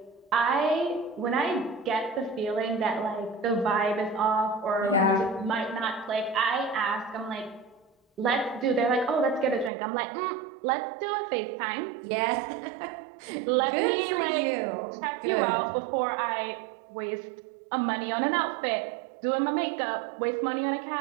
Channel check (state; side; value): drops out; left; at 9.7 s